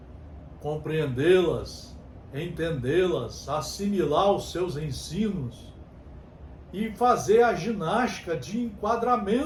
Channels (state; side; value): identical; both; correlation 1.00